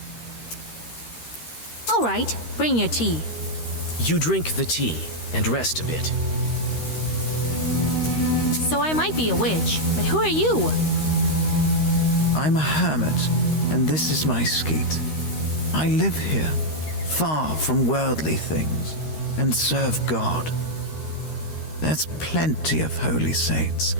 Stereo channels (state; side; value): late; right; 13 ms